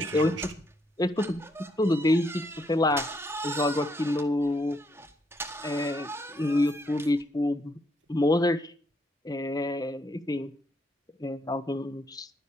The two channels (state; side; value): normal; both; correlation 0.74